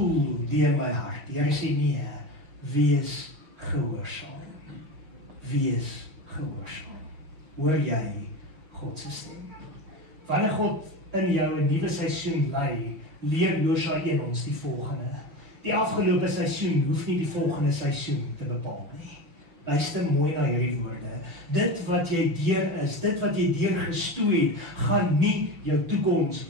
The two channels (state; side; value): late; left; 6.3 ms